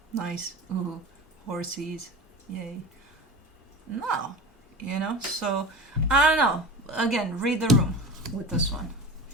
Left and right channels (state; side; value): normal; both; correlation 0.31